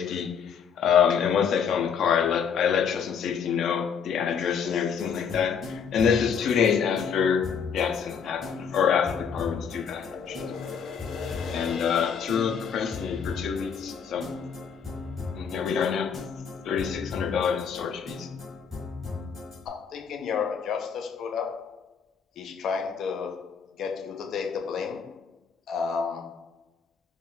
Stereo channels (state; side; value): quieter; right; 6.8 dB